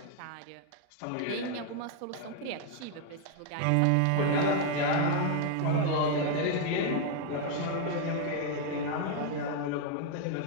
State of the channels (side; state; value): both; different; correlation 0.00